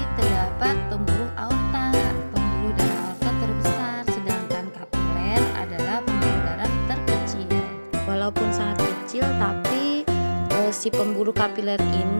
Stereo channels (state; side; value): inverted; both; correlation -1.00